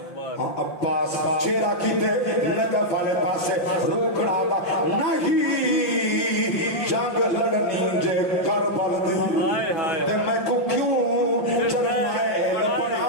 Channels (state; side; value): late; right; 5.7 ms